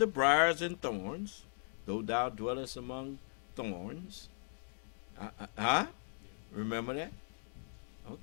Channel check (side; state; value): right; silent; 52 dB below the other